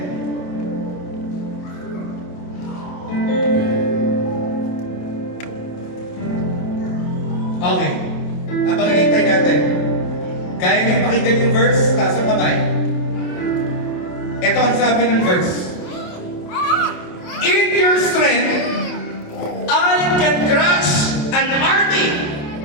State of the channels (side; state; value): right; late; 28 ms